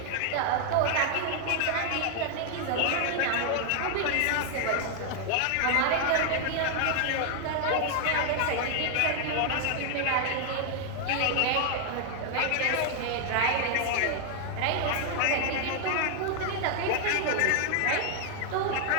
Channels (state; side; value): different; both; correlation 0.00